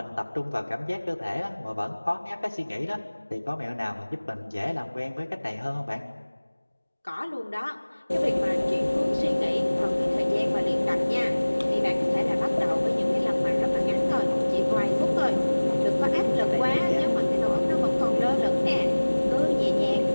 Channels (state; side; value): inverted; both; correlation -1.00